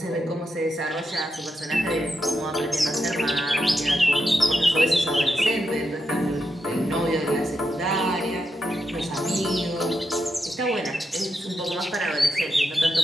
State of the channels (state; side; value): normal; both; correlation 0.85